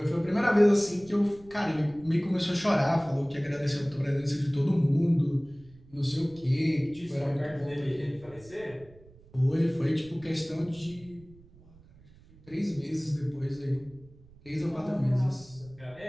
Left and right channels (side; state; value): right; noise; rumble, 24 dB below the sound